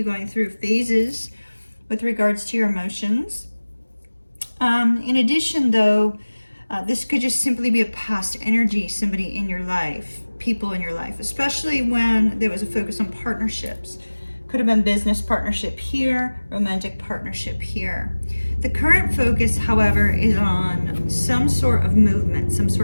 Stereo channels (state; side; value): inverted; both; correlation -1.00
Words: going through phases with regards to your emotions. In addition, though, this could just simply be a past energy, somebody in your life, people in your life, especially when there was a focus on partnerships. Could have been business partnership here, romantic partnership here. The current focus, however, is on some sort of movement, some